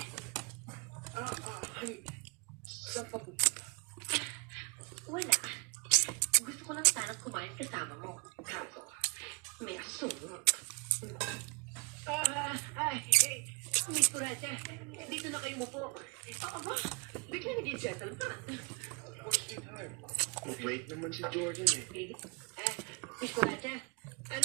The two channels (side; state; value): left; quieter; 31.5 dB